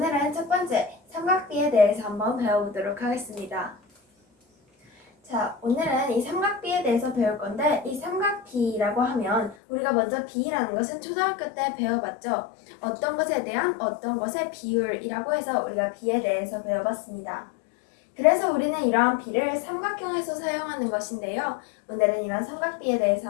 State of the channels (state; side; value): drops out; right; at 9.6 s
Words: 첫 번째 삼각비에 대해서 한번 배워보도록 하겠습니다. 자, 오늘은 이 삼각비에 대해서 배울 건데, 이 삼각비라고 하면 우리가 먼저 비라는 것은 초등학교 때 배워봤죠. 어떤 것에 대한 어떤 것의 비율이라고 해서 우리가 비에 대해서 배워봤습니다. 그래서 우리는 이러한 비를 삼각형에서 사용하는 것인데요. 오늘은 이런 삼각비에 대해서